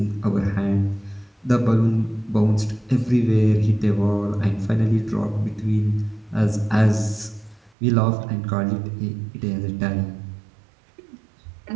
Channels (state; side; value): drops out; left; at 7.7 s